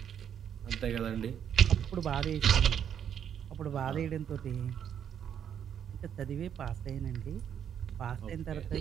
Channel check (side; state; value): left; quieter; 8.8 dB